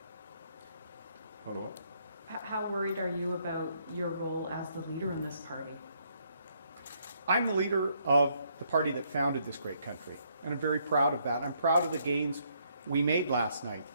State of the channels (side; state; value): both; inverted; correlation -0.71